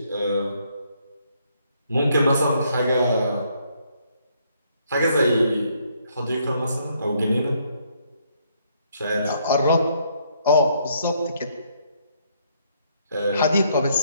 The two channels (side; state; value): both; inverted; correlation -0.70